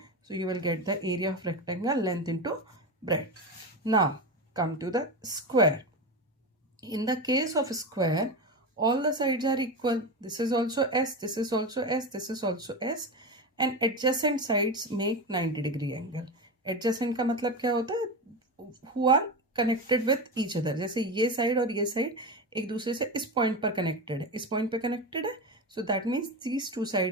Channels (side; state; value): both; normal; correlation 0.20